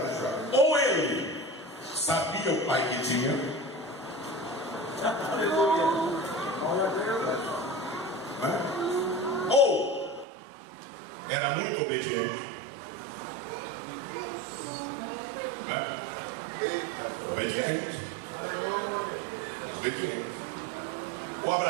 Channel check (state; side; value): drops out; left; at 10.2 s